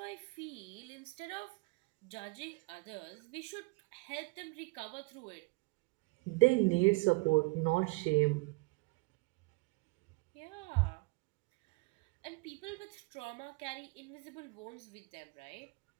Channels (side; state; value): left; quieter; 26.6 dB